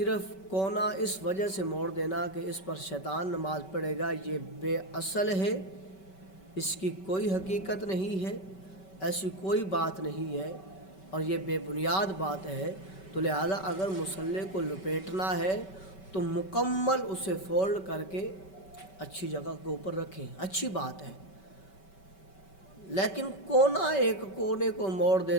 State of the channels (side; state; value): right; late; 5.2 ms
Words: کونا اس وجہ سے موڑ دینا کہ اس پر شیطان نماز پڑھے گا، یہ بے اصل ہے، اس کی کوئی حقیقت نہیں ہے، ایسی کوئی بات نہیں ہے، اور یہ بے بنیاد بات ہے۔ تو لہذا اگر مصلی کو لپیٹنا ہے تو مکمل اسے فولڈ کر کے اچھی جگہ کے اوپر رکھیں، اچھی بات ہے، لیکن ایک کونے کو موڑ